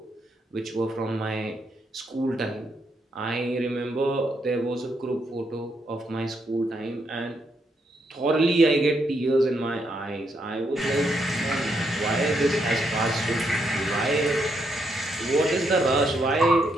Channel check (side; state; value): both; normal; correlation 0.77